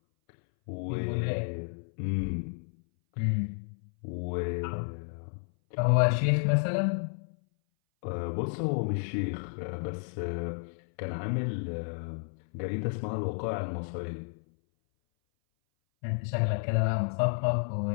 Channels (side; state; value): right; silent; 57 dB below the other